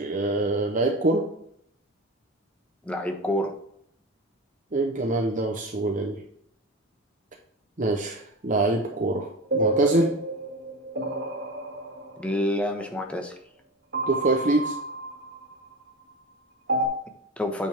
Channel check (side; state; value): both; normal; correlation 0.27